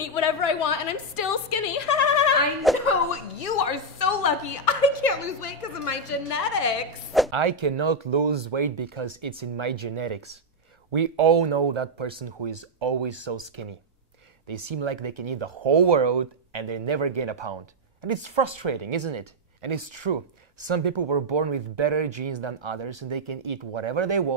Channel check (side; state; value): both; normal; correlation -0.02